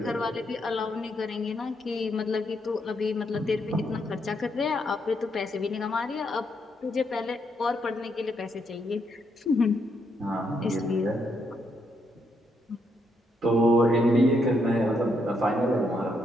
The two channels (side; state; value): both; normal; correlation 0.77